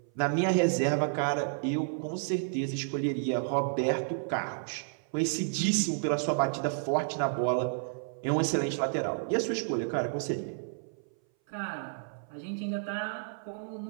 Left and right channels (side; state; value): left; silent; 56 dB below the other